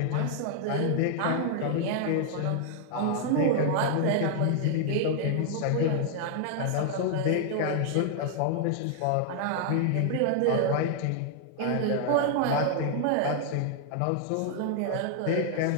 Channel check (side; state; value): both; different; correlation 0.00